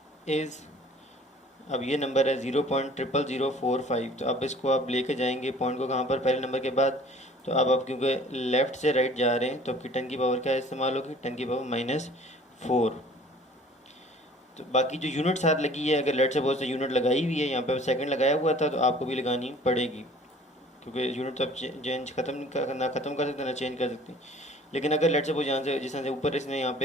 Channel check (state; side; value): normal; both; correlation 0.50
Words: is, अब ये नंबर है 0.00045, तो अब इसको आप लेके जाएंगे पॉइंट को कहाँ पर, पहले नंबर के बाद। तो अब आप क्योंकि लेफ़्ट से राइट जा रहे हैं तो आपकी 10 की पावर क्या इस्तेमाल होगी, 10 की पावर -4। तो बाकी जो यूनिट साथ लगी है, अगर लेट सपोज से यूनिट लगाई हुई है, यहाँ पे सेकंड लगाया हुआ था, तो आपको भी लगानी पड़ेगी, क्योंकि यूनिट तो आप चेंज ना ख़त्म कर सकते ना चेंज कर सकते। लेकिन अगर लेट सपोज यहाँ से जिस तरह से ऊपर इसने यहाँ